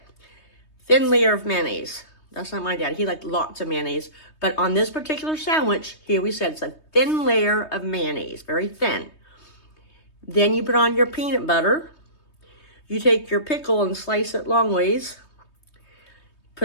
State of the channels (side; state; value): right; late; 3.2 ms